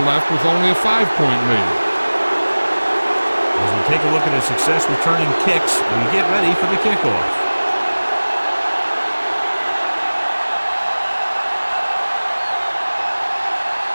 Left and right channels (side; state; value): both; inverted; correlation -1.00